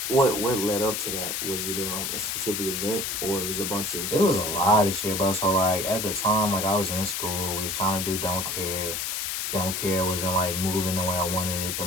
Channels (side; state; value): left; noise; hiss, 2 dB below the sound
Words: What led up to that? Was it a specific event, or was it a bunch of? It was a lot of shit, bro. So like at the time, like I was in school, we was trying to do Don't Care. Don't Care wasn't like moving the way I wanted it to